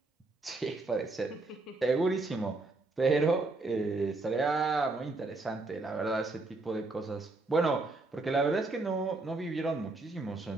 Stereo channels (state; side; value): quieter; left; 3.3 dB